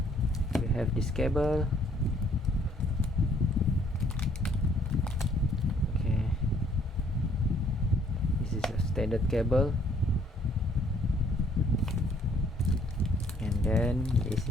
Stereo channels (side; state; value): both; normal; correlation 0.63